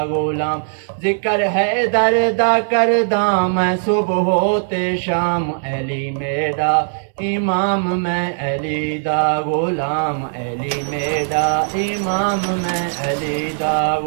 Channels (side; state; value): left; silent; 67 dB below the other